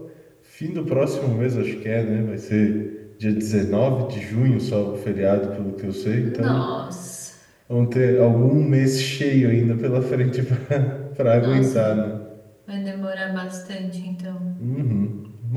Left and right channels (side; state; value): both; identical; correlation 1.00